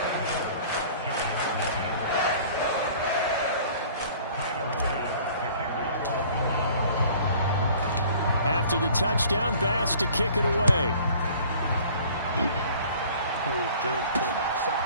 After the touchdown, Bass to kick it away.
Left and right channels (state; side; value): inverted; both; correlation -0.50